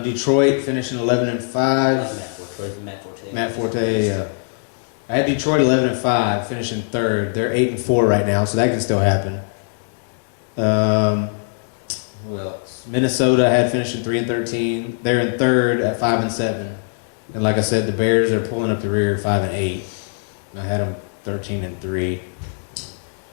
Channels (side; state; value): right; silent; digital silence